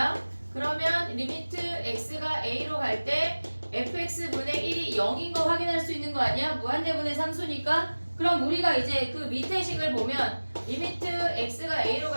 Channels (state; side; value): inverted; both; correlation -1.00